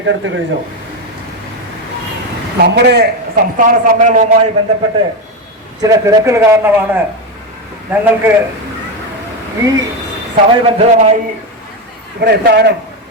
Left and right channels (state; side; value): normal; both; correlation 0.11